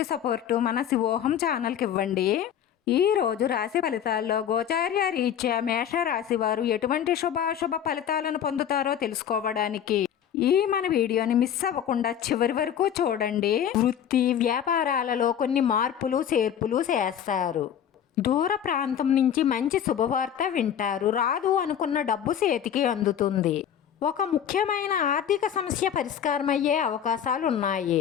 సపోర్టు మన శివోహం ఛానల్కి ఇవ్వండి. ఈ రోజు రాశి ఫలితాల్లో గోచార్య రీత్యా మేష రాశి వారు ఎటువంటి శుభాశుభ ఫలితాలను పొందుతారో తెలుసుకోవడానికి ఈ మన వీడియోని మిస్ అవ్వకుండా చివరి వరకు చూడండి. వృత్తి వ్యాపారాలలో కొన్ని మార్పులు చేర్పులు చేస్తారు. దూర ప్రాంతం నుంచి మంచి శుభవార్త వింటారు. రాదు అనుకున్న డబ్బు చేతికి అందుతుంది. ఒక ముఖ్యమైన ఆర్థిక సమస్య పరిష్కారమయ్యే అవకాశాలు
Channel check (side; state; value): right; quieter; 9.3 dB